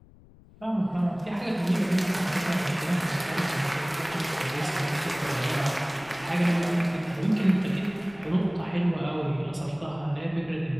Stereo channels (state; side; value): noise; left; rumble, 24 dB below the sound